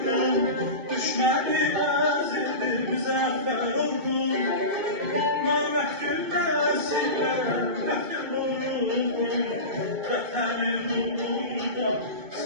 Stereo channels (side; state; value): left; late; 2.2 ms